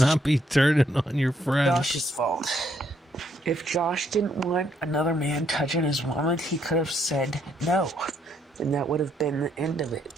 be turning on your friend. Josh's fault. If Josh didn't want another man touching his woman, he could have said no. And that would have been the end of it.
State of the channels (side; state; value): both; normal; correlation 0.72